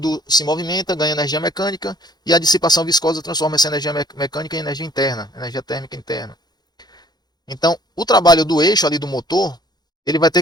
se movimenta, ganha energia mecânica e a dissipação viscosa transforma essa energia mecânica em energia interna, energia térmica interna. Então, o trabalho do eixo ali do motor, ele vai ter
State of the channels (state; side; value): late; right; 0.20 ms